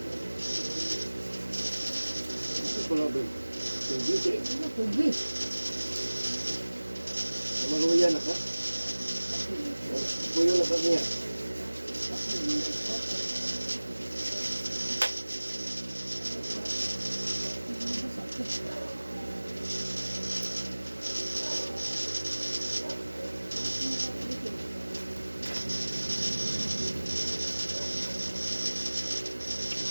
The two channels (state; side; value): inverted; both; correlation -1.00